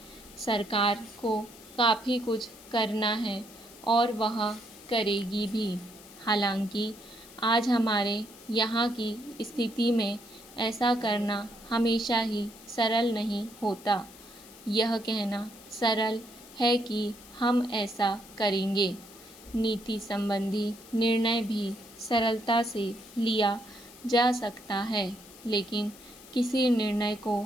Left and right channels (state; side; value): noise; left; hiss, 20 dB below the sound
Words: सरकार को काफ़ी कुछ करना है और वह करेगी भी। हालांकि आज हमारे यहाँ की स्थिति में ऐसा करना हमेशा ही सरल नहीं होता। यह कहना सरल है कि हम ऐसा करेंगे। नीति संबंधी निर्णय भी सरलता से लिया जा सकता है, लेकिन किसी निर्णय को